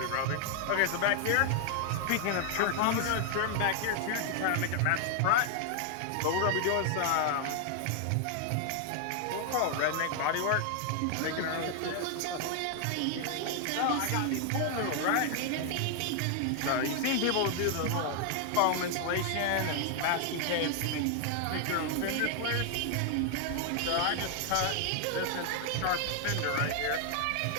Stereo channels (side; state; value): both; different; correlation 0.00